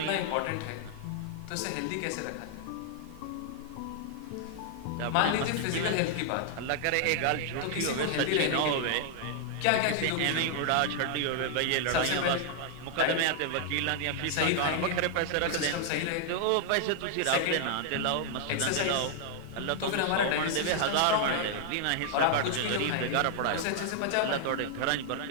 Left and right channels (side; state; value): both; different; correlation 0.00